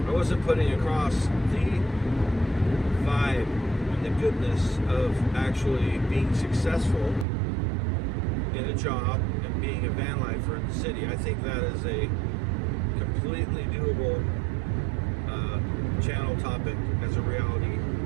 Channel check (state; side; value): drops out; left; at 7.2 s